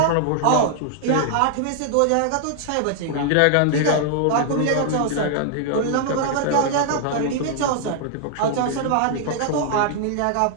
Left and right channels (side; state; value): both; different; correlation 0.00